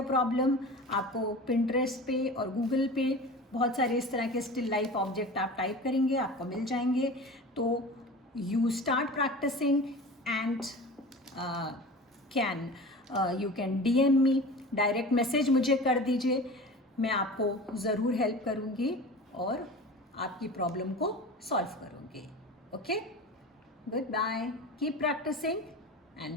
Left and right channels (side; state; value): both; normal; correlation 0.35